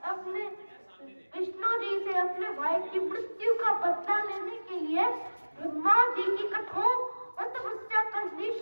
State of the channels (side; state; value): both; inverted; correlation -1.00